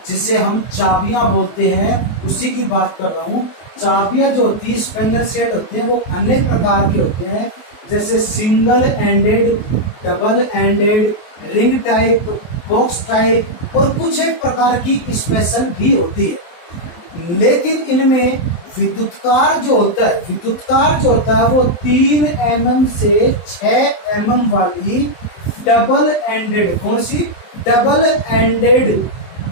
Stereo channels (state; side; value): late; right; 23 ms